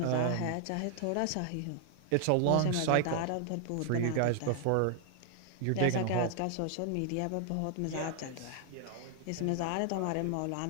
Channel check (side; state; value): both; different; correlation 0.00